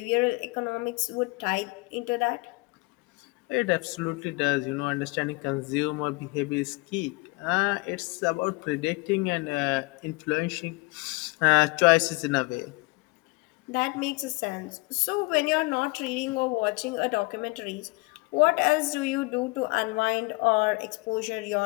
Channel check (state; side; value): quieter; right; 25.9 dB